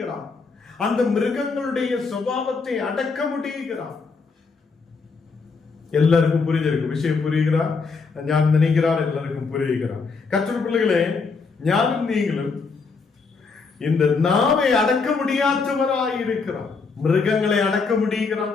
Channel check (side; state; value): right; quieter; 4.6 dB